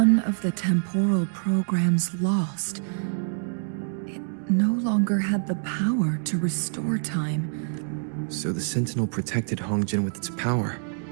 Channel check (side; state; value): left; silent; digital silence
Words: of the temporal programs lost, it no longer had the power to restore time. So the Sentinel protected Hongjin with its power.